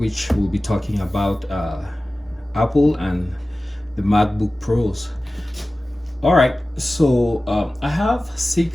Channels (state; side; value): normal; both; correlation 0.96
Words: will be talking about Apple and the MacBook Pros. All right, so I have